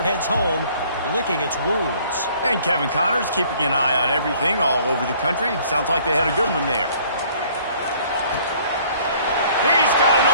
heads home licking its wounds. And Kevin Connors keeping an eye on everything all over the country. Sounds like they had a good one there. He's got an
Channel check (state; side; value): inverted; both; correlation -0.57